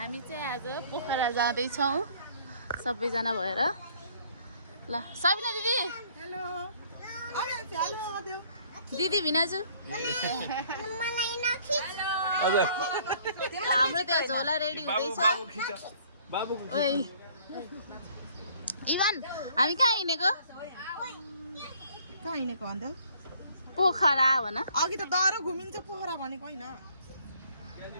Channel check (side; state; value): both; inverted; correlation -0.59